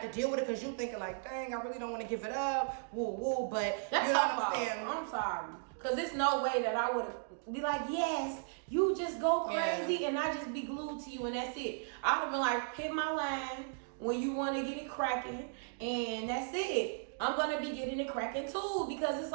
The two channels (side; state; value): left; silent; digital silence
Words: to deal with it because you thinking like, dang, I really don't want to give it up, woo woo, but that's you know what I'm saying? I'm sorry, because there's no way that I would be like, yes, you just go crazy and I just be glued to you and that's it. I would have been like, hit my line when you want to get it cracking and that's it. I'm going to be getting it cracking too because it's